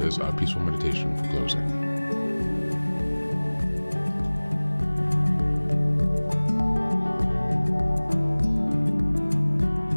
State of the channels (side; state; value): both; inverted; correlation -1.00